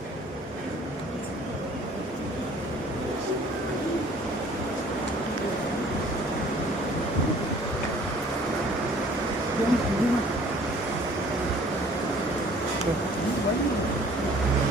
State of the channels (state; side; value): normal; both; correlation 0.54